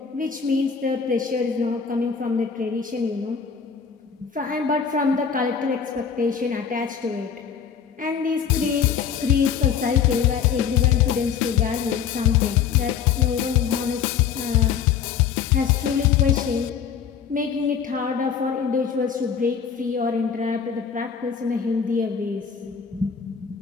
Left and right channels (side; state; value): right; quieter; 7.2 dB